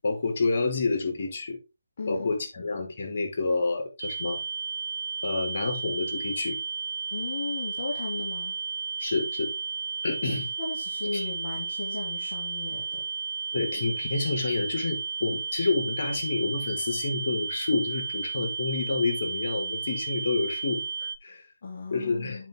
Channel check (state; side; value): inverted; both; correlation -0.86